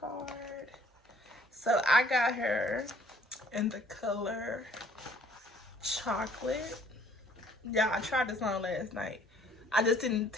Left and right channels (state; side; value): normal; both; correlation 0.59